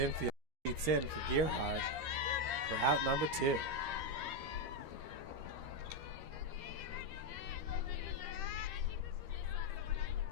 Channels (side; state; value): left; late; 13 ms